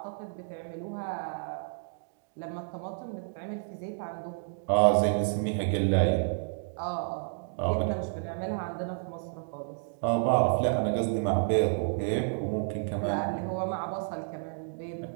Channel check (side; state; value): left; silent; digital silence